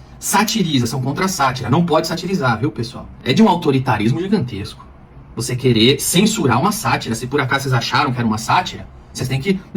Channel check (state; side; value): identical; both; correlation 1.00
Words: Satiriza, são contra a sátira. Não pode satirizar, viu, pessoal? É de um autoritarismo gigantesco. Você querer censurar uma sátira. Se por acaso vocês acharam que era uma sátira, vocês têm que